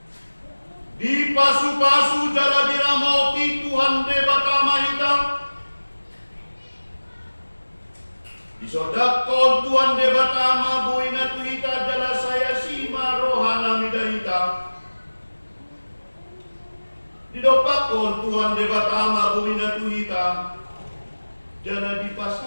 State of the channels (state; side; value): inverted; both; correlation -1.00